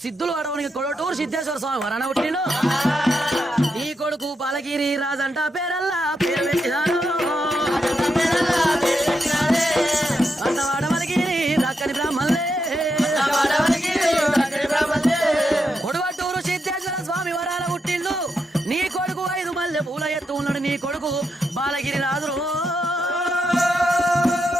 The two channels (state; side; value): normal; both; correlation 0.83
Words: సిద్ధులు అడవనికి కొడటూరు సిద్ధేశ్వర స్వామి వరణ పుట్టిండు నీ కొడుకు బాలగిరి రాజంట పేరల్లా పేరు పెట్టినాడు అంటవాడవలగిరి దక్కని బ్రాహ్మణులే కొడవటూరు సిద్ధేశ్వర స్వామి వరాల పుట్టిండు నీ కొడుకు 5 మల్లె పూల ఎత్తు ఉన్నాడు నీ కొడుకు బాలగిరి రాజు